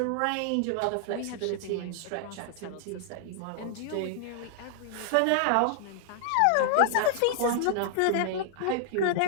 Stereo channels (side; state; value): both; different; correlation -0.01